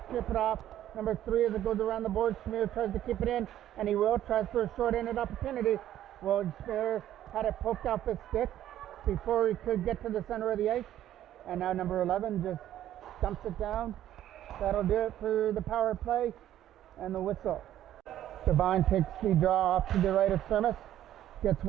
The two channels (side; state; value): left; quieter; 12.2 dB